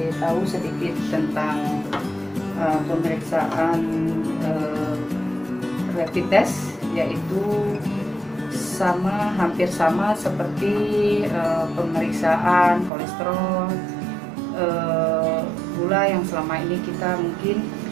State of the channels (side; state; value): left; drops out; at 12.9 s